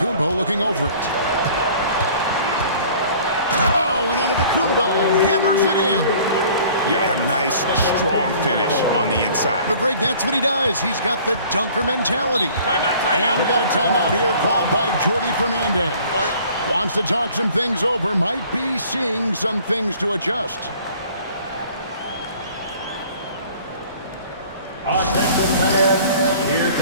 looking over it. Oh, and Antetokounmpo hammers it in. Yeah, a nice, strong finish on the inside. But Greg, that's what he does. He's got the dunker mentality. And we got a timeout here called by Jordi Fernandez. Wants to talk some things over. Might be seeing some things to adjust. Attention fans, here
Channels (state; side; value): inverted; both; correlation -0.51